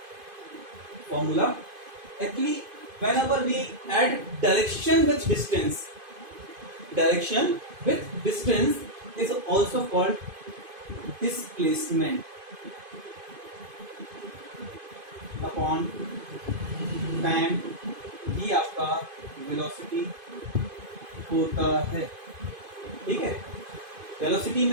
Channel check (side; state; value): left; late; 2.5 ms